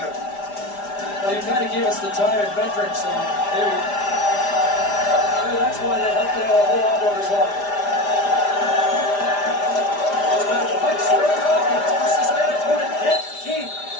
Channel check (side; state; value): right; late; 5.0 ms